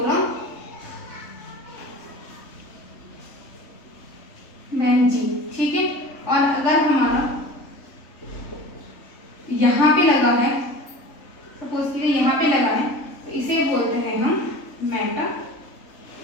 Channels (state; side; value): late; right; 3.5 ms